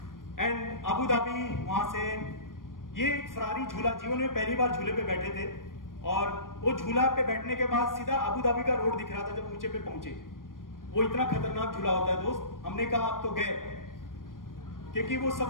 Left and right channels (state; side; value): late; right; 0.90 ms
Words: एंड अबू धाबी, वहां से ये फरारी झूला, जीवन में पहली बार झूले पे बैठे थे, और वो झूला पे बैठने के बाद सीधा अबू धाबी का रोड दिख रहा था जब ऊंचे पे पहुंचे। वो इतना खतरनाक झूला होता है दोस्त। हमने कहा आप तो गए, क्योंकि वो